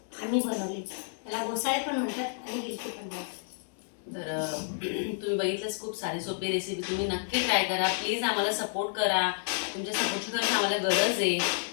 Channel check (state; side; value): silent; right; 58 dB below the other